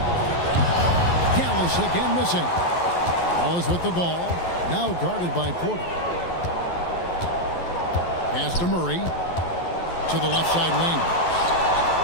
Gallus again missing. Wallace with the ball. Now guarded by Porter. Pass to Murray. To the left side wing.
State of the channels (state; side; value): late; right; 11 ms